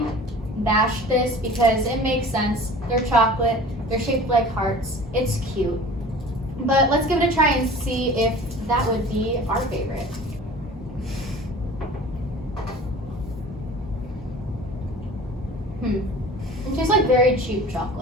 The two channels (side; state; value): both; normal; correlation 0.42